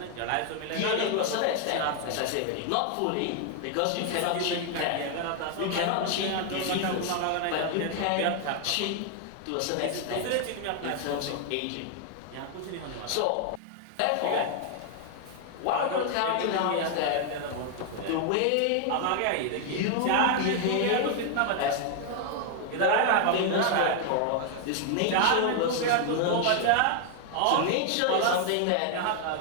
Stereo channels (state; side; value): different; both; correlation 0.00